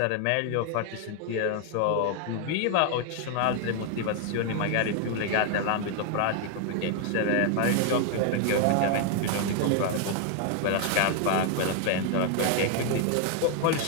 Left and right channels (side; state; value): both; different; correlation 0.01